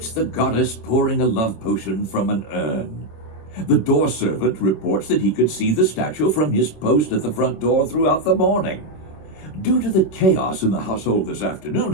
the goddess pouring a love potion from an urn. The door servant reports that he could see the statue from his post at the front door throughout the morning. Due to the chaos in the household this afternoon,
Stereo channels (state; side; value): late; right; 26 ms